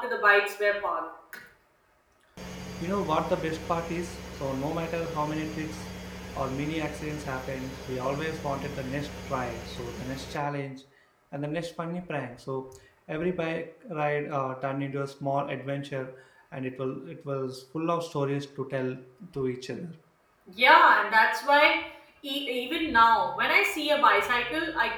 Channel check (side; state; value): both; identical; correlation 1.00